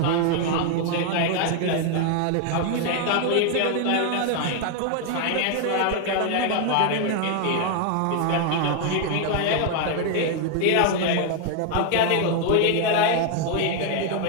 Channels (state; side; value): different; both; correlation 0.00